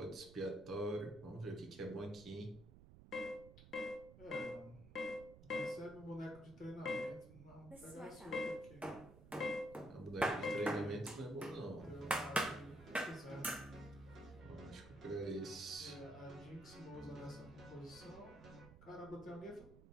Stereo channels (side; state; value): right; noise; rumble, 17 dB below the sound